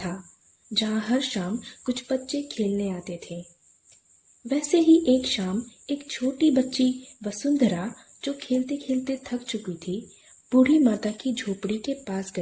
जहाँ हर शाम कुछ बच्चे खेलने आते थे। वैसे ही एक शाम एक छोटी बच्ची वसुंधरा, जो खेलते खेलते थक चुकी थी, बूढ़ी माता की झोपड़ी के पास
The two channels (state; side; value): identical; both; correlation 1.00